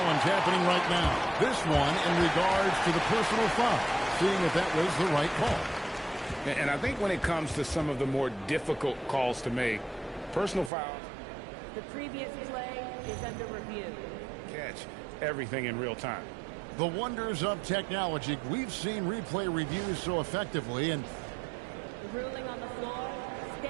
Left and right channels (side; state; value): left; drops out; at 10.7 s